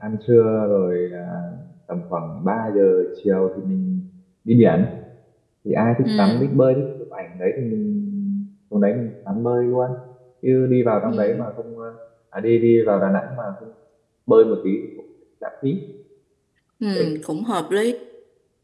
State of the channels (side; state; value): both; identical; correlation 1.00